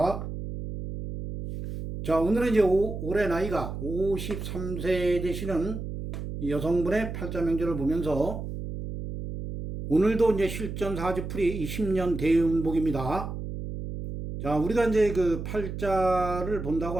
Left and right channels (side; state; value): right; noise; hum, 7 dB below the sound